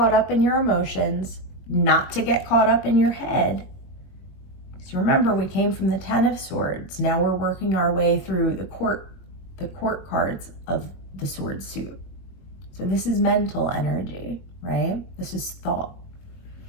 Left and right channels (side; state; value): right; late; 21 ms